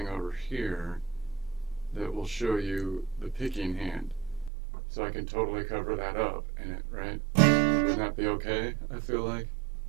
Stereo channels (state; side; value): drops out; left; at 4.5 s